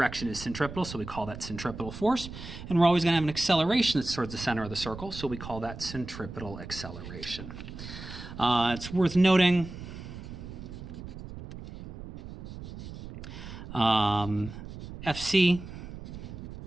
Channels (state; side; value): noise; right; rumble, 11 dB below the sound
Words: is centripetal, so we call that centripetal force. And we're always going to have an acceleration that's towards the center of the circle, so we call that centripetal acceleration. It's worth noting FC,